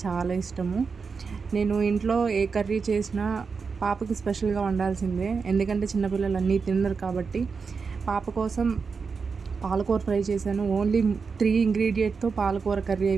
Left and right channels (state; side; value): quieter; left; 5.2 dB